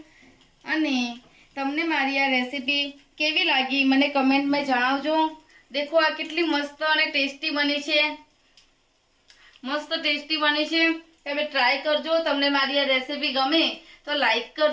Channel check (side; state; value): both; identical; correlation 1.00